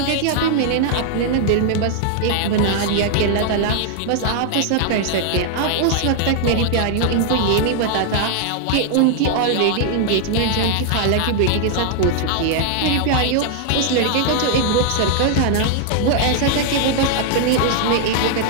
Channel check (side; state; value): both; different; correlation 0.00